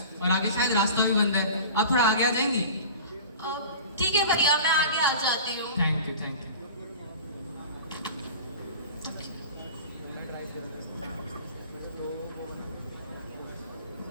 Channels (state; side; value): inverted; both; correlation -0.37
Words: और आगे शायद रास्ता भी बंद है, आप थोड़ा आगे आ जाएंगी? ठीक है भैया, मैं आगे आ जाती हूँ। Thank you thank you.